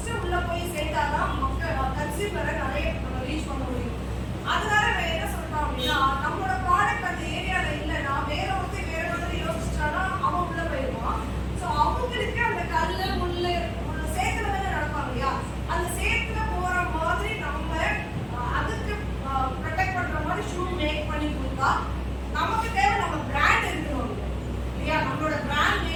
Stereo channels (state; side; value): identical; both; correlation 1.00